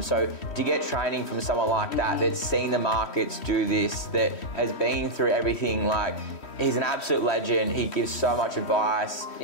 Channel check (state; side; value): late; right; 3.1 ms